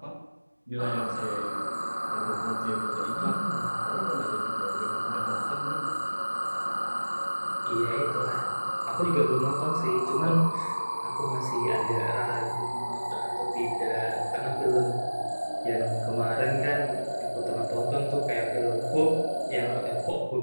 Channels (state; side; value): inverted; both; correlation -1.00